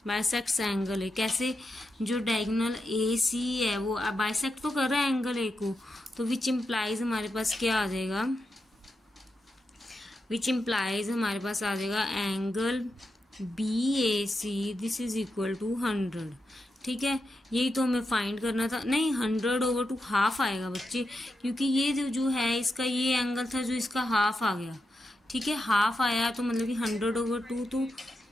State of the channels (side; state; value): both; normal; correlation 0.87